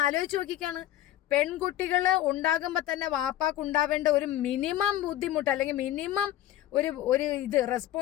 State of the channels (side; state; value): right; quieter; 13.2 dB